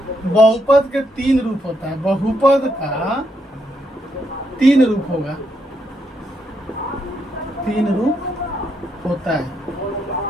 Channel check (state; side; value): normal; both; correlation 0.78